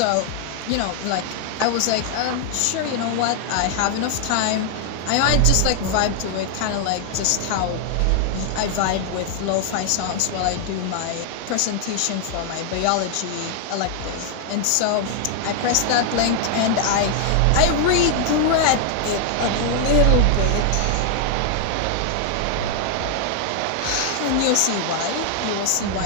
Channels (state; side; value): different; both; correlation 0.00